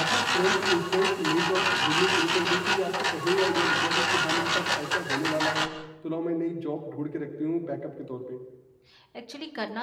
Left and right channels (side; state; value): both; identical; correlation 1.00